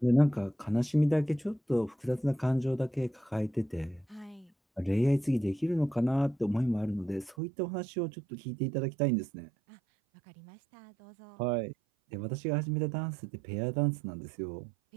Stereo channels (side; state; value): left; drops out; at 7.4 s